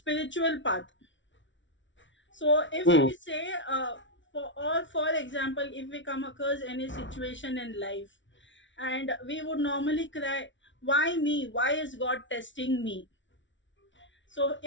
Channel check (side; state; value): right; late; 0.55 ms